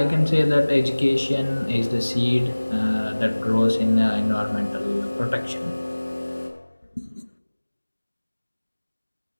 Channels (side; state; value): both; inverted; correlation -1.00